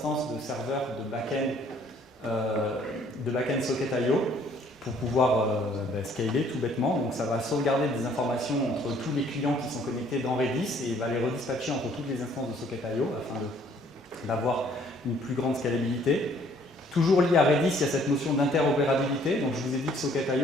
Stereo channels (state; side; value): normal; both; correlation 0.61